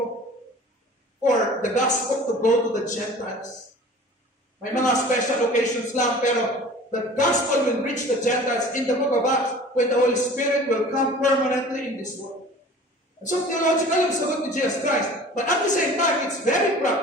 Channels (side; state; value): both; normal; correlation 0.44